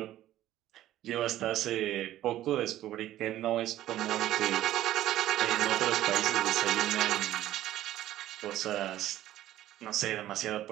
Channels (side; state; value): left; quieter; 13.5 dB